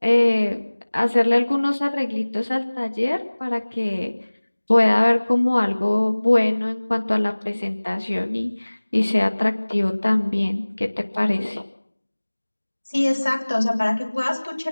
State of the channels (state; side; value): inverted; both; correlation -1.00